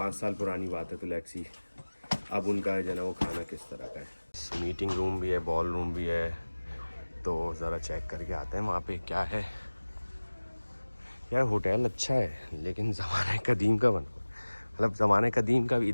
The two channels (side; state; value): both; inverted; correlation -1.00